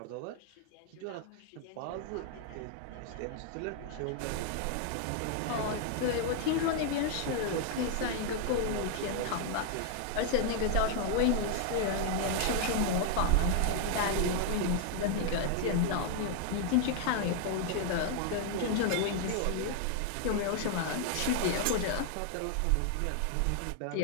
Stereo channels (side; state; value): both; different; correlation 0.00